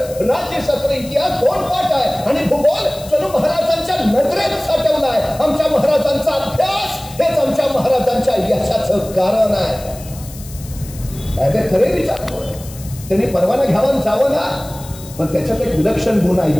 राज्यशास्त्र, इतिहास 2 पाठ आहे आणि भूगोल जणू महाराजांच्या नजरेत साठवला आहे. आमच्या महाराजांचा अभ्यास हेच आमच्या महाराजांच्या यशाचं कारण आहे. अगदी खरे विचार. त्यांनी परवाना घ्यावा जावं ना, पण त्याच्यात एक विलक्षण गुण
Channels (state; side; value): noise; left; hiss, 17 dB below the sound